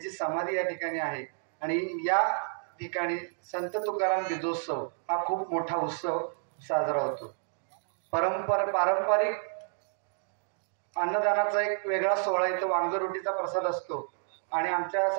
समाधी या ठिकाणी आहे आणि या ठिकाणी संत तुकाराम बीजोत्सव हा खूप मोठा उत्सव साजरा होतो. पारंपरिक अन्नदानाचा एक वेगळा सोहळा इथं वांगरोटीचा प्रसाद असतो आणि आमच्या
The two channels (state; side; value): silent; left; digital silence